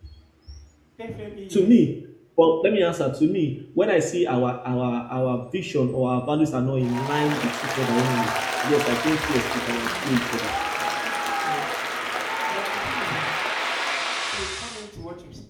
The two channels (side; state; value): both; identical; correlation 1.00